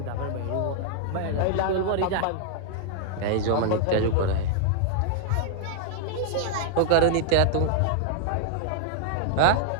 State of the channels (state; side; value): different; both; correlation -0.01